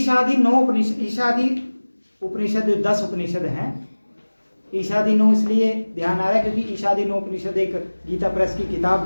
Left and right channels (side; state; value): both; inverted; correlation -1.00